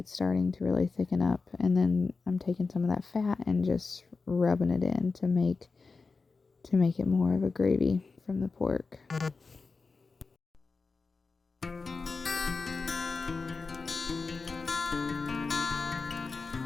starting to really thicken up, and then I'm taking some of that fat and just rubbing it in to make it more of a gravy from the pork.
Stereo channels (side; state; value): right; quieter; 4.3 dB